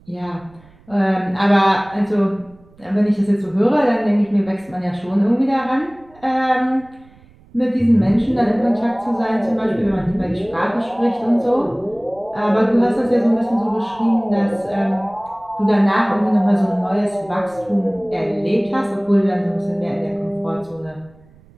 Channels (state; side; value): noise; right; rumble, 27 dB below the sound